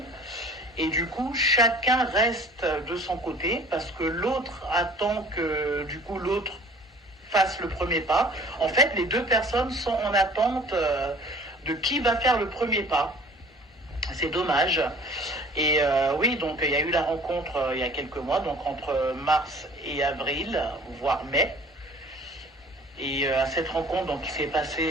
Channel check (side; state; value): both; normal; correlation 0.48